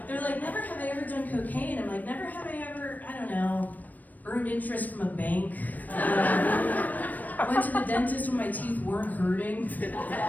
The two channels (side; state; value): right; late; 0.083 ms